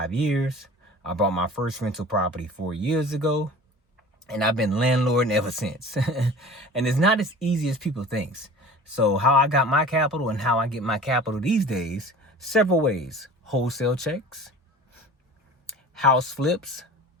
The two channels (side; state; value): both; normal; correlation 0.41